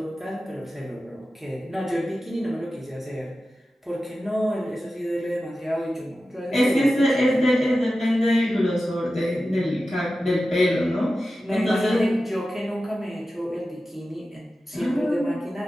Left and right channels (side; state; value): both; normal; correlation 0.93